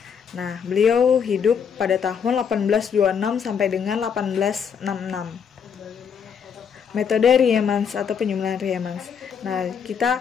Nah, beliau hidup pada tahun 1826 sampai dengan 1866. Metode Riemann atau penjumlahan Riemann. Nah, kita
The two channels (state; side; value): quieter; right; 7.1 dB